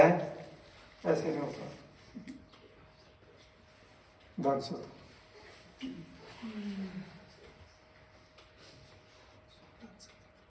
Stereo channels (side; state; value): both; identical; correlation 1.00